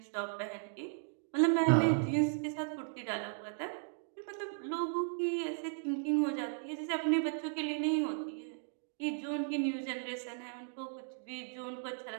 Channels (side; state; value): left; silent; digital silence